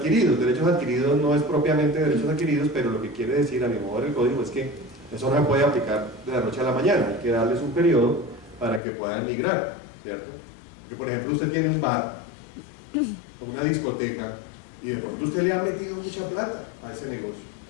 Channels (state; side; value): drops out; right; at 8.8 s